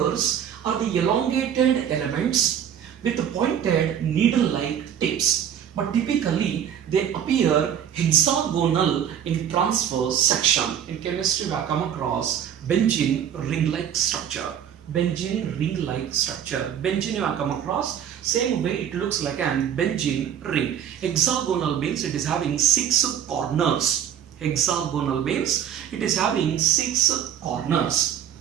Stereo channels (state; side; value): quieter; left; 9.2 dB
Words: are the elongated elements with pointed needle-like tips, but typically they appear hexagonal in transverse section. In chemistry we have come across benzene ring-like structure. Benzene ring-like structure. Benzene you have come across, same way it looks like an benzene ring. Hexagonal means it is having 6 corners. Hexagonal means it is having 6 corners.